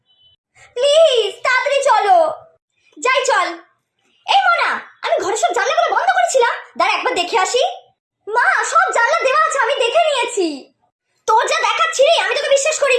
প্লিজ তাড়াতাড়ি চলো। যাই চল। এই মনা, আমি ঘরের সব জানলাগুলো বন্ধ করেছিলাম, দাঁড়া একবার দেখে আসি। মা, সব জানলা দেওয়া আছে, আমি দেখে নিয়েছি। তোর যা দেখাচ্ছি রে, আমি তোকে বিশ্বাস করি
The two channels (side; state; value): both; identical; correlation 1.00